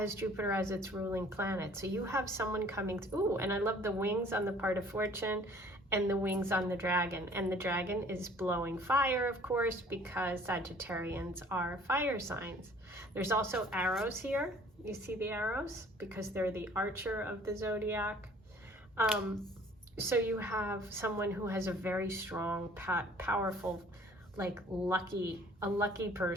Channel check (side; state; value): both; normal; correlation 0.54